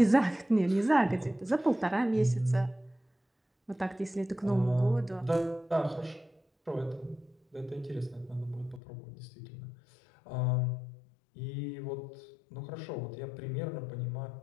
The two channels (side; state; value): right; drops out; at 8.8 s